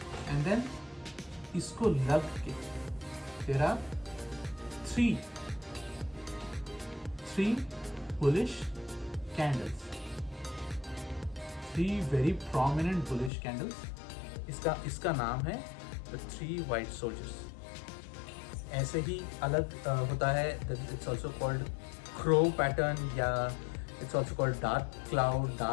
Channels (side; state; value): right; drops out; at 13.3 s